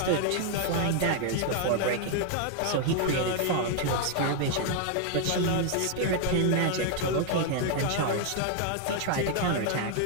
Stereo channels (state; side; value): different; both; correlation 0.00